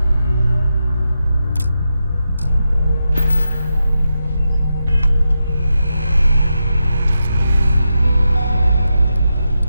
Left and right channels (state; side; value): inverted; both; correlation -0.87